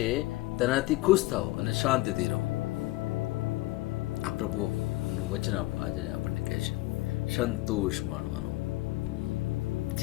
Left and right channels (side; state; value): right; quieter; 19.4 dB